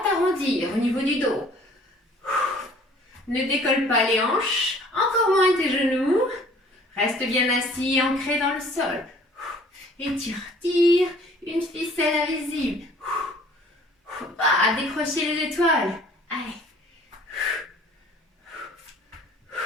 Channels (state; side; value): normal; both; correlation 0.53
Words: t'arrondir au niveau du dos. Ne décolle pas les hanches. Encore moins tes genoux. Reste bien assis, ancré dans le sol. Étire, tire. Une ficelle invisible. Faut pas décrocher les étoiles. Allez.